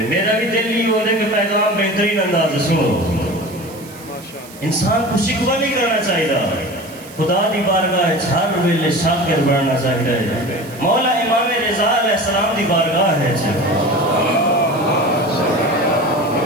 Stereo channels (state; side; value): noise; right; hiss, 20 dB below the sound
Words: میرا بھی دل ہی ہونے کہ پیغام بہترین انداز سنو انسان کو شکوہ نہیں کرنا چاہیے خدا دی بارگاہ ہر ویلے شاکر بننا چاہیے مولا امام رضا علیہ السلام دی بارگاہ ہے